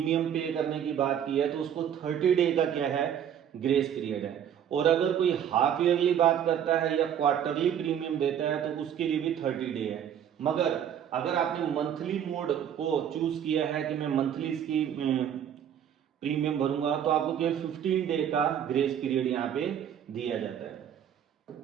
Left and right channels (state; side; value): quieter; left; 9.3 dB